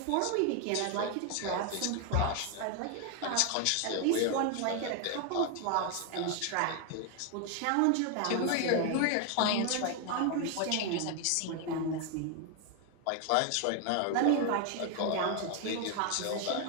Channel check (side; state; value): both; different; correlation 0.01